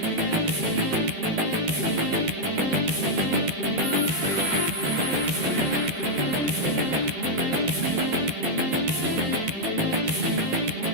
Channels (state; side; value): late; left; 12 ms